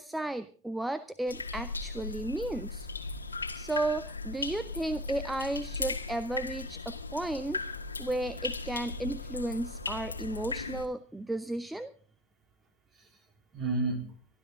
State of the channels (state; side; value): normal; both; correlation 0.40